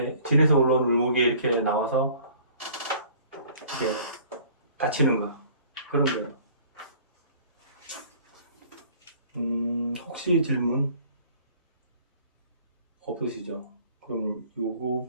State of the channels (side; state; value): both; inverted; correlation -0.52